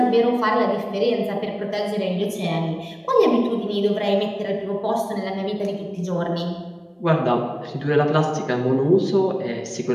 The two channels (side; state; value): both; identical; correlation 1.00